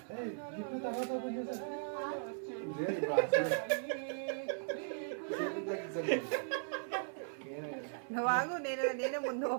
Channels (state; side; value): silent; left; digital silence